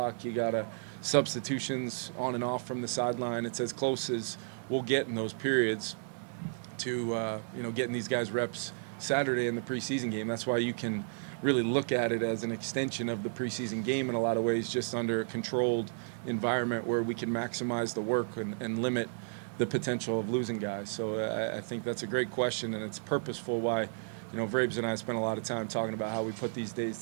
You got to substitutions on and off from the sideline. It's as close as we'll get in those periods to getting these guys reps Saturday in the preseason game. That's why you can really look at it as an extension of the preseason game in a lot of ways, just under a controlled environment where we can maximize the work and limit the potential of losing guys. So I think that's a great question, and it's purposeful why, Vrabes and I spent a lot of time talking about how we put these days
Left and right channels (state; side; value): silent; left; 56 dB below the other